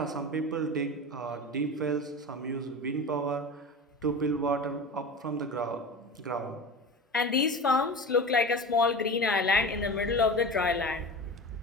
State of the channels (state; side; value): normal; both; correlation 0.31